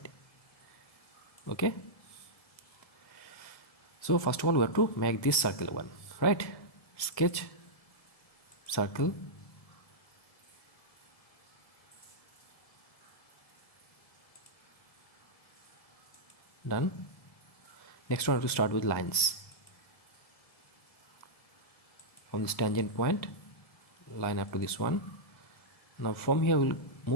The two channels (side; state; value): right; late; 1.7 ms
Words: okay. So first of all we have to make this circle one, right? Sketch, circle, done. Next one we have to start with lines. From this tangent point, line up to this one. Now from here we'll